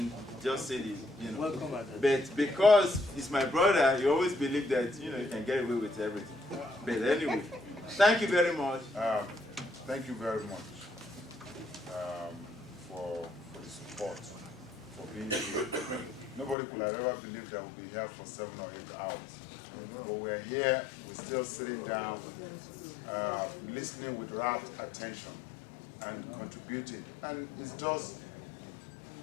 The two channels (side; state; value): right; drops out; at 16.6 s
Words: just say this, But because he's my brother, you always believe that, you can get away with everything. But anyway, thank you very much. Thank you very much for the support, for being here. Nobody could have ever believed that we'll be here for 7 or 8 hours. But we're here, we're still sitting down, listening with rapt attention and contributing. And it's just